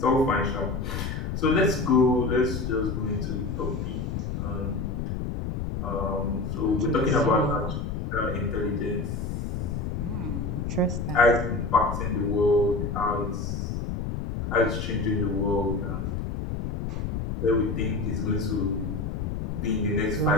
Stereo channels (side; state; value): left; noise; rumble, 3 dB below the sound